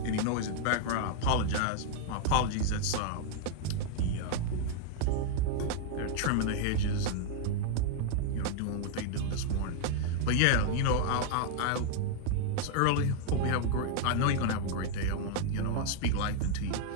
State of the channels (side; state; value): both; different; correlation -0.01